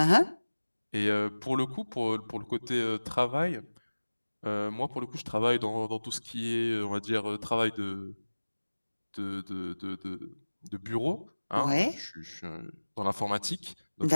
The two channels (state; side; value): inverted; both; correlation -1.00